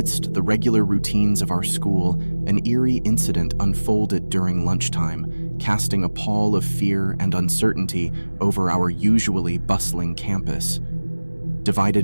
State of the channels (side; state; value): both; inverted; correlation -1.00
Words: the regular routines of our school, an eerie incident unfolded during lunchtime, casting a pall of fear and uncertainty over our usually bustling campus.